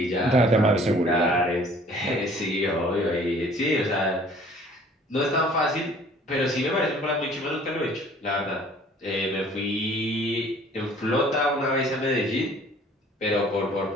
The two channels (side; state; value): both; normal; correlation 0.53